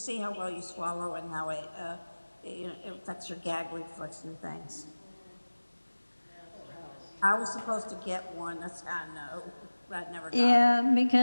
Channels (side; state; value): both; inverted; correlation -1.00